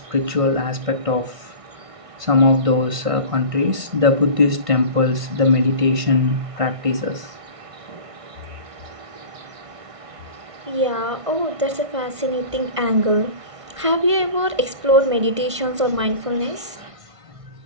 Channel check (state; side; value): late; left; 1.6 ms